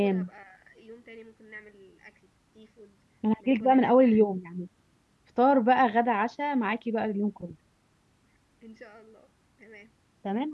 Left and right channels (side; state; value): both; identical; correlation 1.00